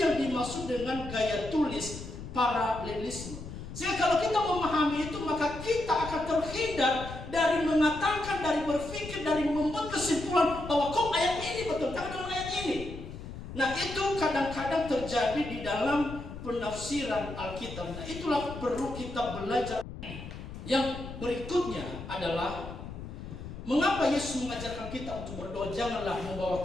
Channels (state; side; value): noise; left; rumble, 11 dB below the sound